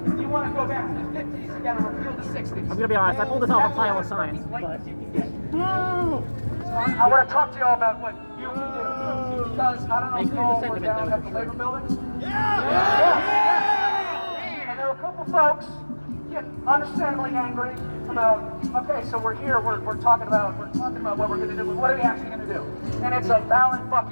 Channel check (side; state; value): both; inverted; correlation -1.00